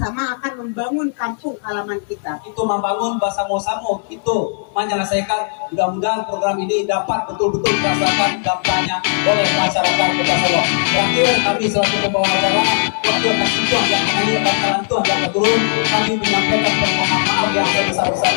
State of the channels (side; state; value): right; silent; digital silence